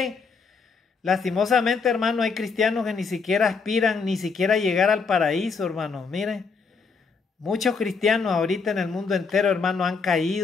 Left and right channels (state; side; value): quieter; right; 4.9 dB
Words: lastimosamente, hermano, hay cristianos que ni siquiera aspiran, ni siquiera llegar al paraíso, hermano. Miren, muchos cristianos ahorita en el mundo entero, hermano, han